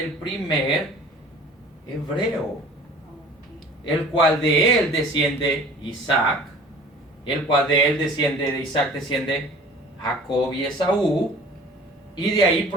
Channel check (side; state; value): both; normal; correlation 0.46